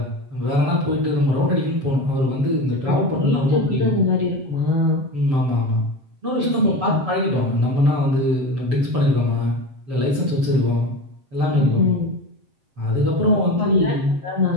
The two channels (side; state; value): left; late; 7.6 ms